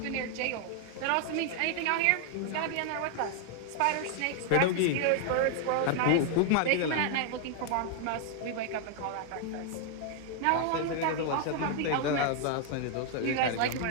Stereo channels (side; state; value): both; different; correlation 0.00